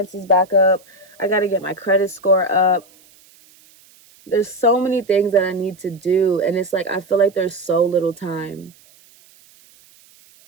back up. I got to get my credit score up. There's so many things that I need to do. And it's like, I feel like there's so little time.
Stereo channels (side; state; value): right; noise; hiss, 28 dB below the sound